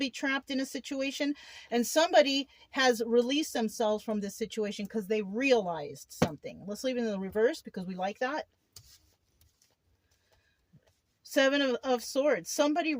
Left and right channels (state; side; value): identical; both; correlation 1.00